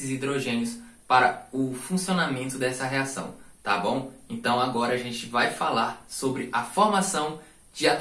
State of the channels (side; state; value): both; identical; correlation 1.00